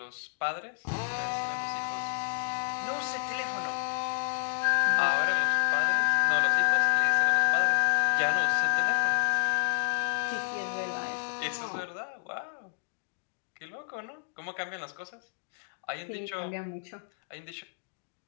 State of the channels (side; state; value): right; silent; digital silence